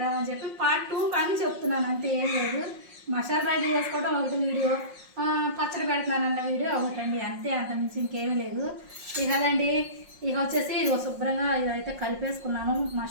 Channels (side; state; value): left; late; 5.5 ms